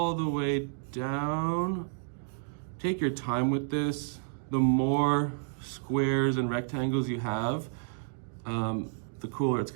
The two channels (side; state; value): left; silent; digital silence